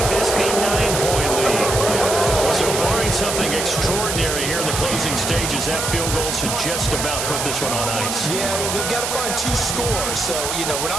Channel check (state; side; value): noise; right; hiss, 2 dB below the sound